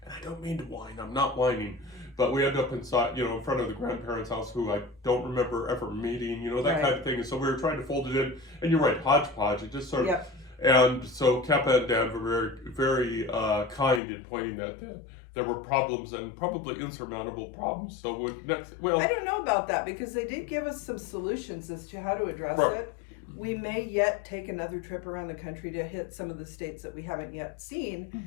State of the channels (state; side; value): drops out; right; at 14.0 s